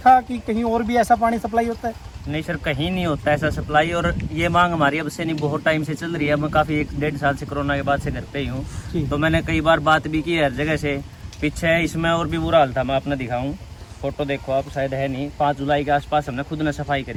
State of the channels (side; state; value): both; identical; correlation 1.00